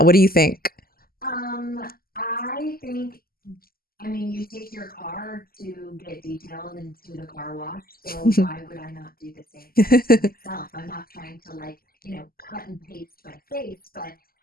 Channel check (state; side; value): late; right; 0.43 ms